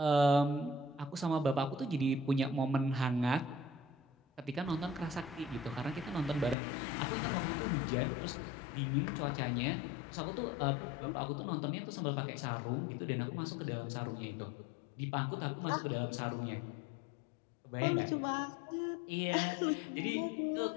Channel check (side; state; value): right; drops out; at 6.6 s